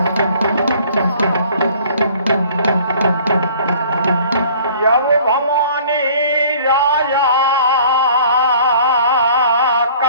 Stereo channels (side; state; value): both; inverted; correlation -0.52